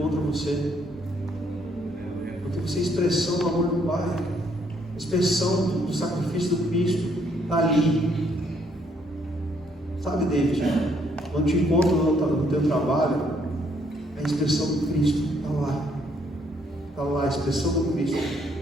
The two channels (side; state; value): both; normal; correlation 0.69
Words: você, porque você é expressão do amor do Pai, expressão do sacrifício do Cristo, está ali. Sabe, David, quando te encontro no teu trabalho, a expressão do Cristo está lá. Está lá a expressão do Cristo